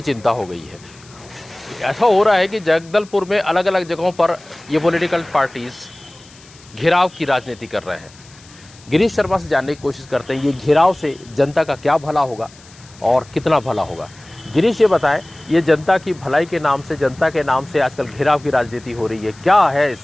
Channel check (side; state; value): left; noise; hiss, 24 dB below the sound